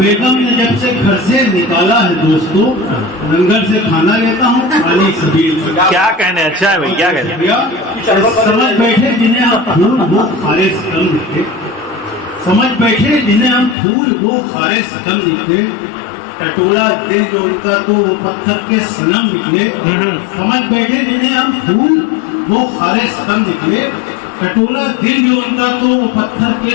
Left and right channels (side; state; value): right; drops out; at 13.8 s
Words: ने जब से घर से निकाला है दोस्तों लंगर से खाना लेता हूँ पानी सबील से। क्या कहने? अच्छा है भाई। क्या कहने? समझ बैठे जिन्हें हम फूल वो खारे सकम निकले। समझ बैठे जिन्हें हम फूल वो खारे सकम निकले। टटोला दिल जो उनका तो वो पत्थर के सनम निकले। समझ बैठे जिन्हें हम फूल वो खारे सकम निकले। टटोला दिल जो उनका तो वो पत्थर के